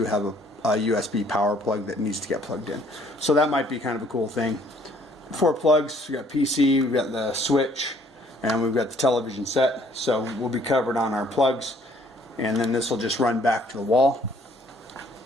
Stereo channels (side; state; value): both; normal; correlation 0.61